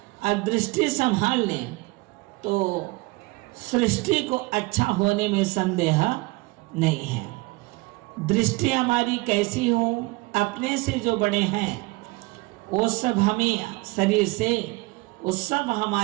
और दृष्टि संभाल लें तो सृष्टि को अच्छा होने में संदेह नहीं है। दृष्टि हमारी कैसी हो? अपने से जो बड़े हैं वो सब हमें शरीर से, वो सब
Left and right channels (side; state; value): left; quieter; 23.7 dB